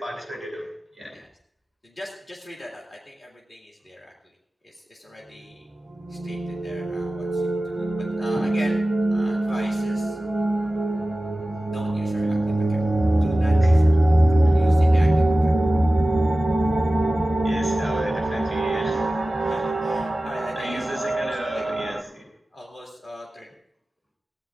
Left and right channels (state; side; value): normal; both; correlation 0.96